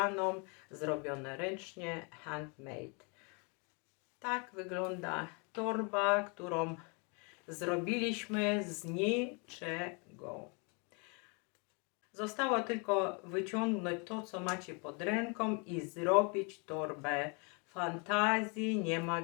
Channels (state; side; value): quieter; right; 33.8 dB